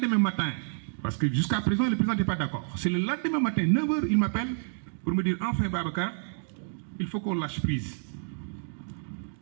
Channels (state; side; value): silent; left; digital silence